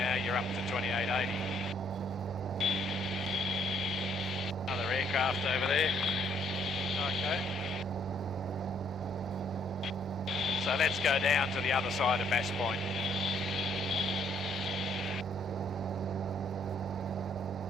you're up to 2880. Another aircraft over there. Okay. So let's go down to the other side of Bass Point.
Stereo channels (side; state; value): both; normal; correlation 0.68